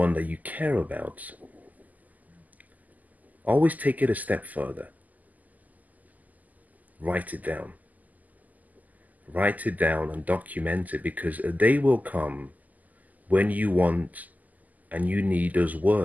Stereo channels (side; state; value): left; late; 0.080 ms